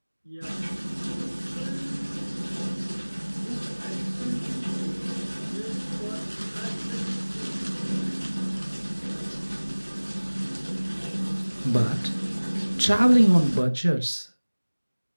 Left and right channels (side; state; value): both; inverted; correlation -1.00